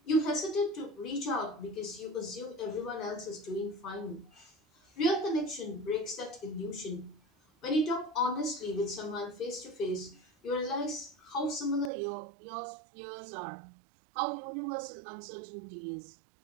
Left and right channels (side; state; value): left; drops out; at 11.9 s